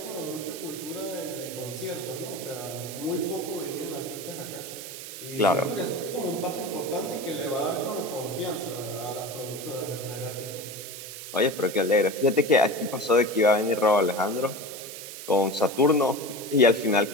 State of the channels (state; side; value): noise; right; hiss, 11 dB below the sound